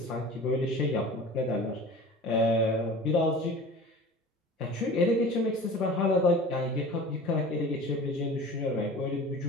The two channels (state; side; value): normal; both; correlation 0.40